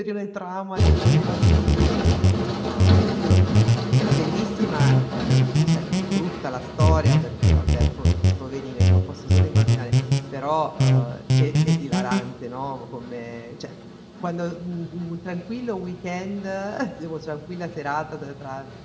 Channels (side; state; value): both; identical; correlation 1.00